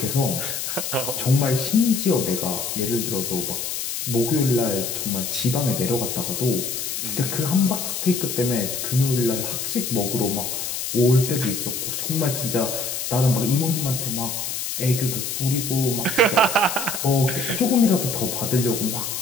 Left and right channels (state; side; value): noise; left; hiss, 4 dB below the sound